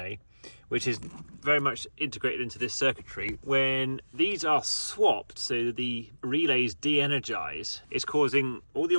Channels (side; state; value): both; inverted; correlation -1.00